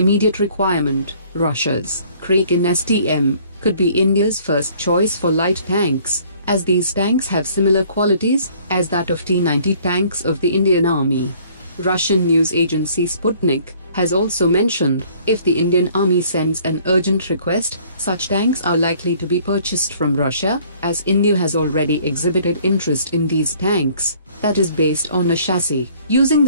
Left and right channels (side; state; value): both; inverted; correlation -0.57